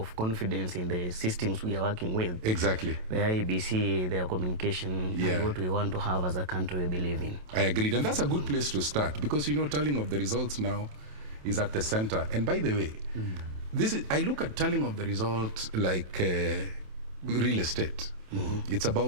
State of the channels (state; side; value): late; left; 27 ms